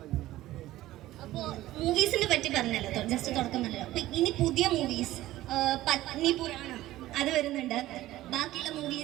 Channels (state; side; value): quieter; left; 15.7 dB